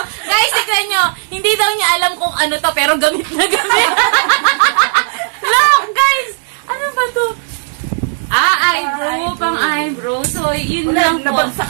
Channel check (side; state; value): left; silent; digital silence